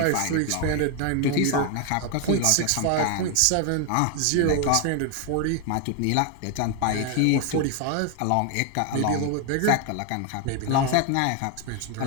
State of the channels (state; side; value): different; both; correlation 0.01